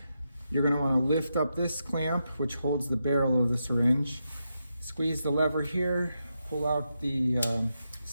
You're going to want to lift up this clamp, which holds the barrel of the syringe. Squeeze the lever here, pull out the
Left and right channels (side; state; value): both; inverted; correlation -0.85